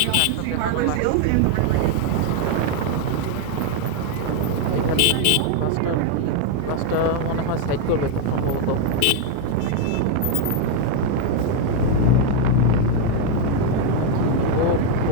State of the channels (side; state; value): both; different; correlation 0.01